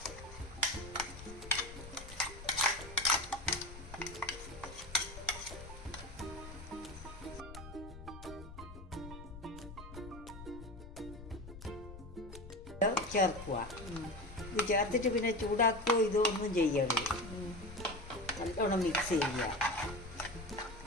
ചേർക്കുക. ഇത് ചേർത്തിട്ട് പിന്നെ ചൂടാക്കുകയോ ഇതൊന്നും ചെയ്യരുത്. നല്ലോണം മിക്സ് ചെയ്യുക.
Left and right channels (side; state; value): left; noise; rumble, 13 dB below the sound